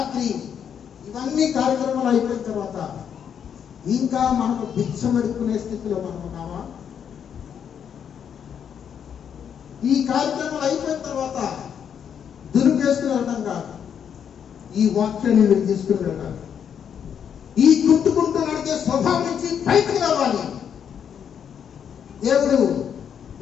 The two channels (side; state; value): right; quieter; 8.1 dB